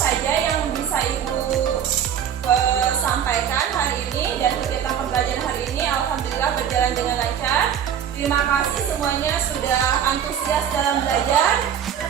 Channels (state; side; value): quieter; left; 8.9 dB